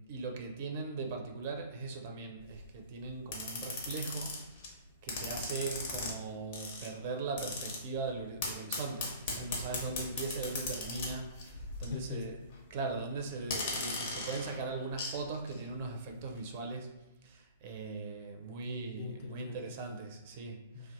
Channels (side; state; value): both; inverted; correlation -0.42